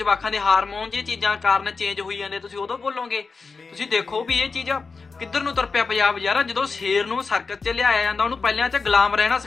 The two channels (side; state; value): right; quieter; 4.6 dB